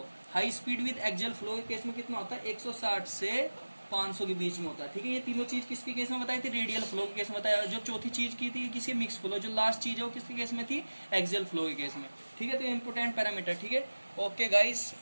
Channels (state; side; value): inverted; both; correlation -1.00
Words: के केस में कितना होता है, 160 से 500 के बीच में होता है, ठीक है। ये तीनों चीज किसके केस में बताई थी, रेडियल फ्लो के केस में बताया। जो चौथी चीज की थी किसके, मिक्स फ्लो, जो लास्ट चीज है वो किसके केस में थी, एक्सियल फ्लो के केस में, ठीक है। तो इंपोर्टेंट पैरामीटर, ठीक है। Okay guys,